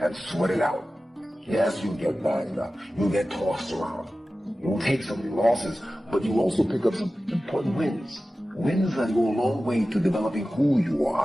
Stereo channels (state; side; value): normal; both; correlation 0.95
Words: and sweat it out. Yes, you'll get banged up. You'll get tossed around. You'll take some losses, but you'll also pick up some important wins. Wins that go a long way to developing who you